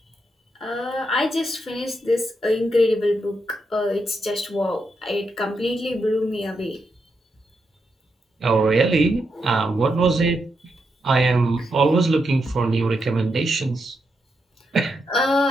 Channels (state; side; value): normal; both; correlation 0.83